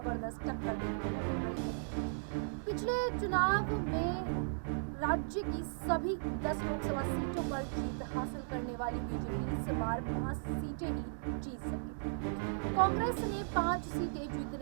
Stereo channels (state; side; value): silent; left; digital silence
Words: टक्कर देखने को मिल रही है। पिछले चुनाव में राज्य की सभी 10 लोकसभा सीटों पर जीत हासिल करने वाली बीजेपी इस बार 5 सीटें ही जीत सकी थी। कांग्रेस ने 5 सीटें